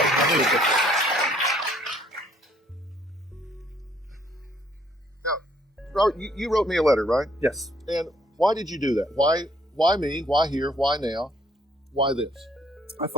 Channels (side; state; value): both; normal; correlation 0.65